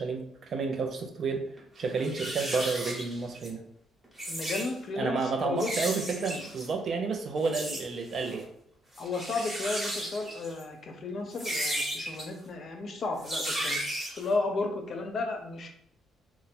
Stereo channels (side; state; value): both; normal; correlation 0.74